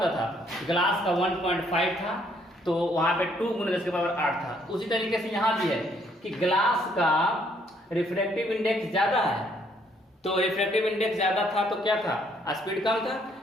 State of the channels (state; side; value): normal; both; correlation 0.67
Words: था? ग्लास का 1.5 था, तो वहां पे 2 × 10⁸ था। उसी तरीके से यहाँ भी है कि ग्लास का रिफ्रैक्टिव इंडेक्स ज्यादा है, तो रिफ्रैक्टिव इंडेक्स ज्यादा था तो क्या था? स्पीड कम था।